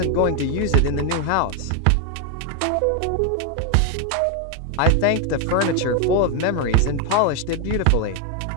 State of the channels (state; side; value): different; both; correlation 0.01